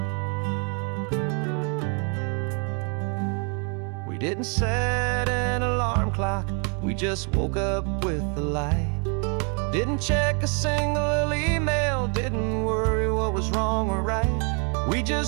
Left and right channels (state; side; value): quieter; left; 37.5 dB